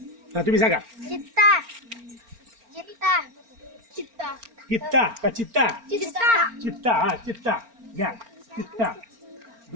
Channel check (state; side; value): late; left; 4.4 ms